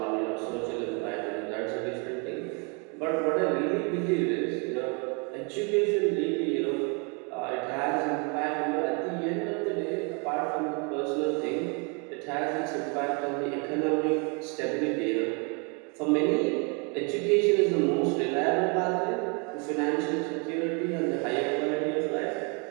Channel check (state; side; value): quieter; left; 33.9 dB